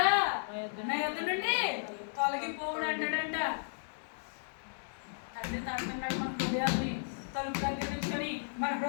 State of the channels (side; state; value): right; silent; 55 dB below the other